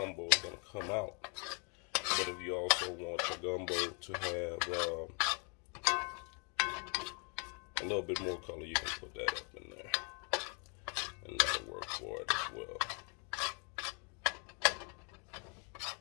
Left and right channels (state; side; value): quieter; right; 35.5 dB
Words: is going to come out. But if you also want your gumbo to have a little bit more color, you can put that up in there, and that'll work for it as well.